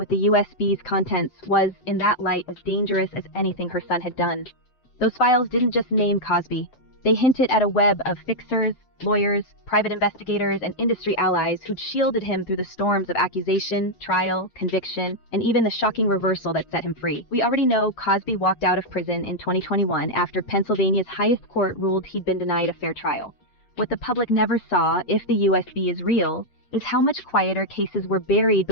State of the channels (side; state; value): right; late; 7.8 ms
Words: the USB's contents was, in that light, as dangerous as anything her son had done. Those files didn't just name Cosby. They hinted at a web of fixers, lawyers, private investigators, and industry allies who'd shielded him through the storms of accusation, trial, conviction, and even the shocking reversal that set him free. We already know Cosby walked out of prison in 2021 after Pennsylvania's highest court ruled he'd been denied a fair trial. What the public never saw, if the USB is real, is how much quieter cases were buried